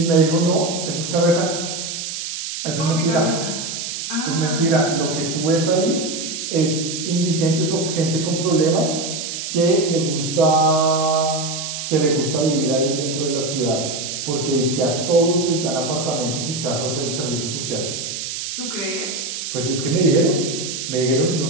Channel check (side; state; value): right; noise; hiss, 6 dB below the sound